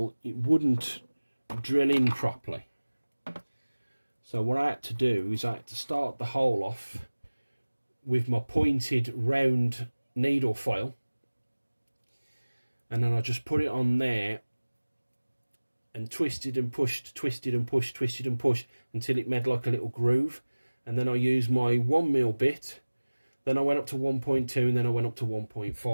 it wouldn't drill in properly, so what I had to do is I had to start the hole off with my pointed round needle file, and then I just put it on there and twisted and pushed, twisted and pushed, twisted and pushed until it made like a little groove. And then I used my 1mm bit, then I went up to 1.2, and then I went up to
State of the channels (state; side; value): inverted; both; correlation -1.00